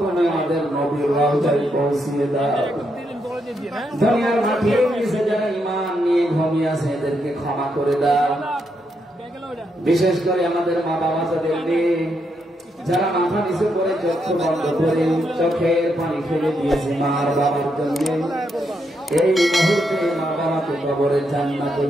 তুমি আমাদের নবীর রওজায় পৌঁছিয়ে দাও। দুনিয়ার মাটির নিচে যারা ঈমান নিয়ে ঘুমিয়ে আছে এদেরকে ক্ষমা করে দাও। বিশেষ করে আমাদের মা বাবা যাদের নেই, যারা মাথা নিচে করে চক্ষু বন্ধ করে চোখের পানি ফেলে দিয়েছে মার বাবার জন্য, এই মুহূর্তে মা বাবাকে কবরে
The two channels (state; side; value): normal; both; correlation 0.80